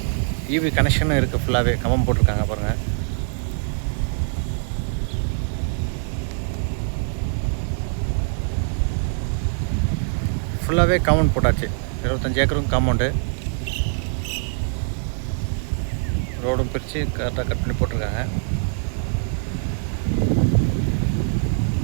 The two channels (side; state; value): left; silent; digital silence